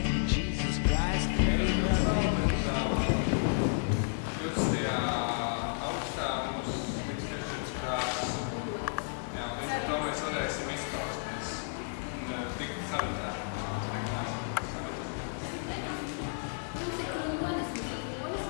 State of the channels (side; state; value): right; silent; digital silence